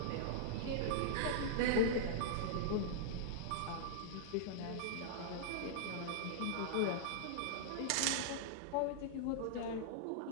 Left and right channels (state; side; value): different; both; correlation -0.02